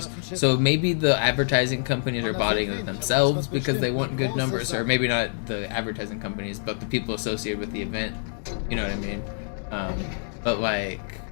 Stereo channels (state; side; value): silent; right; 61 dB below the other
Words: So maybe the advertising companies are botting it themselves because they want good numbers, or maybe not the advertising companies, but the people associated with the event. You know what I mean? But like,